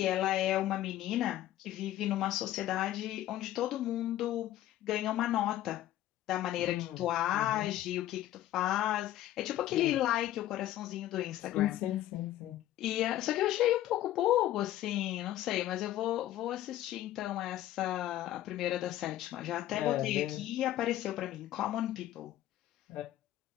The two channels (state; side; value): quieter; right; 13.6 dB